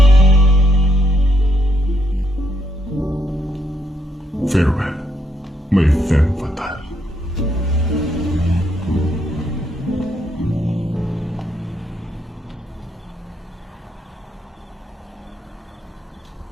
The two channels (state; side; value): normal; both; correlation 0.75